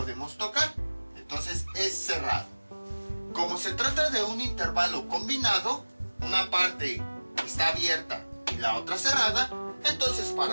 tocar. Entonces es cerrado. Como se trata de un intervalo combinado, una parte está abierta y la otra cerrada, entonces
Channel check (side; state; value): both; inverted; correlation -1.00